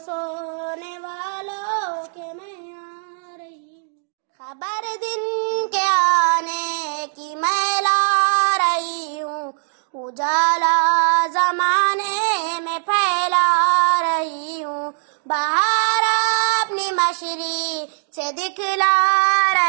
سونے والوں کے میں آ رہی ہوں، خبر دن کے آنے کی میں لا رہی ہوں، اجالا زمانے میں پھیلا رہی ہوں، بہار اپنی مشری سے دکھلا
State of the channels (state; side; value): silent; left; digital silence